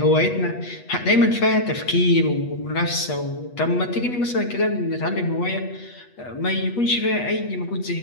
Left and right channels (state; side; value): late; right; 8.3 ms